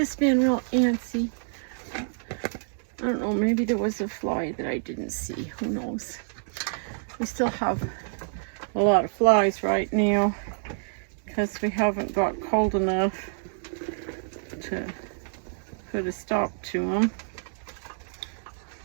been real antsy. I don't know, maybe there was a fly that I didn't see. Who knows? We still have a lot of flies right now because we haven't got cold enough to put a stop to them.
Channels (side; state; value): left; silent; digital silence